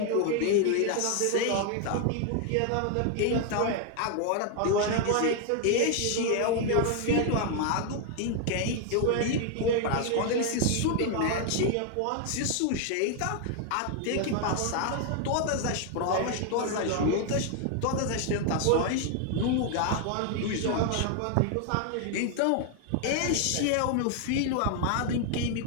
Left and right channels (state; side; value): different; both; correlation 0.00